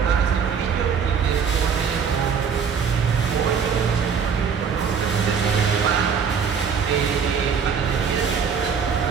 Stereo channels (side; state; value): left; quieter; 6.6 dB